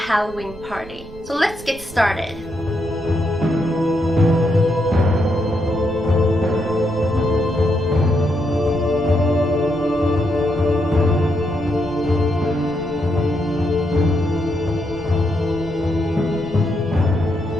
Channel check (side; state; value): right; noise; rumble, 17 dB below the sound